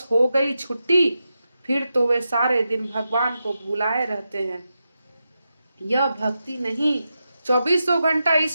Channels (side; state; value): both; inverted; correlation -0.89